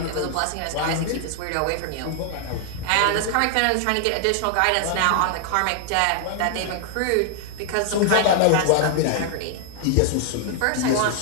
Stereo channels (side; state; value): both; different; correlation 0.00